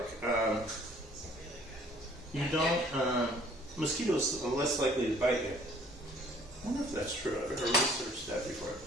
you don't, mosquitoes are less likely to bite you. I wonder if that's true. I've never researched that before I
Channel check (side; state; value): both; normal; correlation 0.57